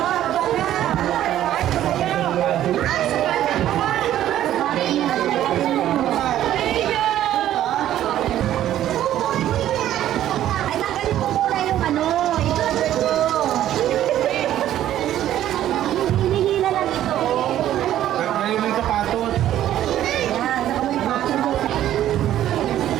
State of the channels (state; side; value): quieter; left; 12.3 dB